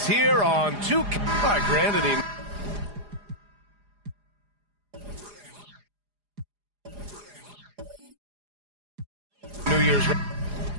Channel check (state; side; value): late; left; 4.9 ms